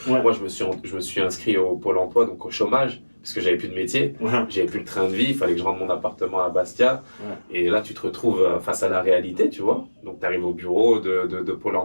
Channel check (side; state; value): both; inverted; correlation -1.00